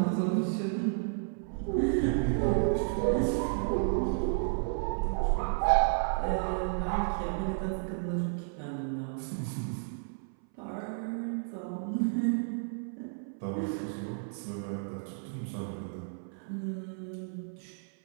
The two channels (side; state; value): left; silent; 56 dB below the other